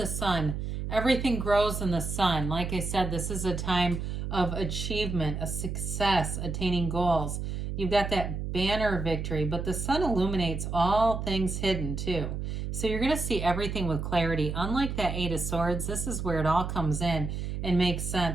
sun. Everything grows in the sun. Like I said, this is a time of achievement, a success, attaining goals. You've got that banner victory, but the sun illuminates all things hidden too. So you're going to see everything with clarity. Unlike that Eight of Swords, this is where it all comes in and makes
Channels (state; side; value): noise; right; hum, 4 dB below the sound